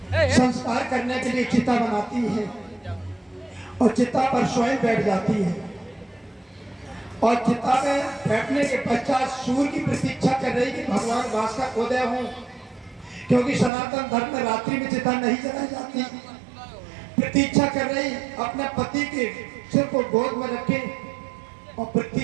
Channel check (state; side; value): drops out; left; at 13.7 s